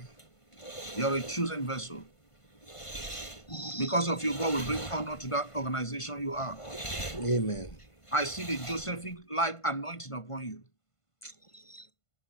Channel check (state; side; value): late; right; 1.5 ms